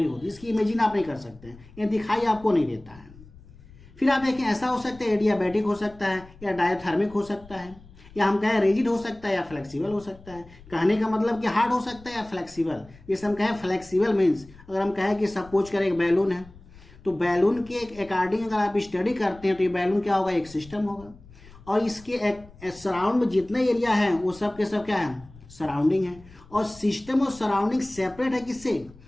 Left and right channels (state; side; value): noise; left; rumble, 22 dB below the sound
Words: होती है। इसकी इमेजिन आप नहीं कर सकते हैं, ये दिखाई आपको नहीं देता है। फिर आप देखें ऐसा हो सकता है एडियाबैटिक हो सकता है या डायथर्मिक हो सकता है, या हम कहें रिजिड हो सकता है या फ्लेक्सिबल हो सकता है। कहने का मतलब कि हार्ड हो सकता है या फ्लेक्सिबल। जैसे हम कहें फ्लेक्सिबल मीन्स, अगर हम कहें कि सपोज करें एक बैलून है, तो बैलून के अकॉर्डिंग अगर आप स्टडी करते हैं तो ये बैलून क्या होगा, एक सिस्टम होगा, और इसके सराउंड में जितने एरिया है वो सब के सब क्या है, सराउंडिंग है। और सिस्टम और सराउंडिंग सेपरेट है किससे,